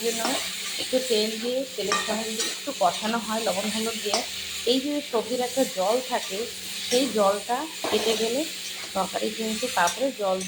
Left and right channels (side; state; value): both; identical; correlation 1.00